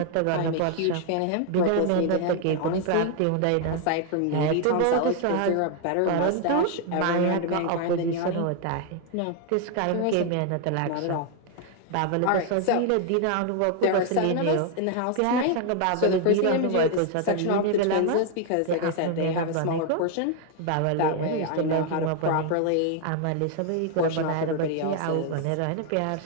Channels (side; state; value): both; different; correlation 0.00